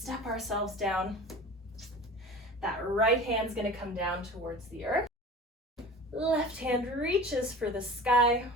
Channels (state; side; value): normal; both; correlation 0.37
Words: ourselves down. That right hand's gonna come down towards the earth. Left hand reaches for the sky,